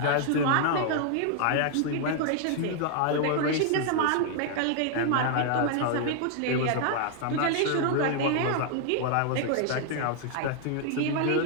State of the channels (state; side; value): different; both; correlation 0.00